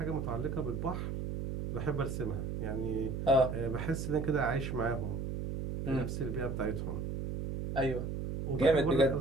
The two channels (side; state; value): right; noise; hum, 4 dB below the sound